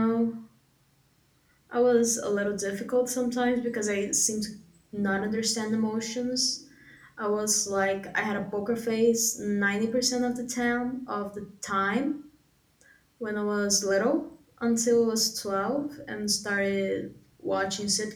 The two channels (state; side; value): identical; both; correlation 1.00